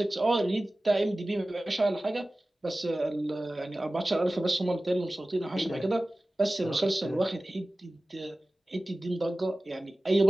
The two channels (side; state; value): both; normal; correlation 0.97